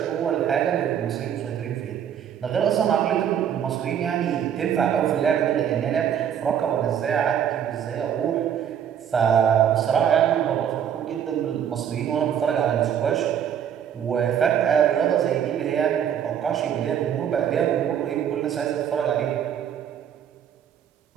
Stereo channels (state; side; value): quieter; left; 9.0 dB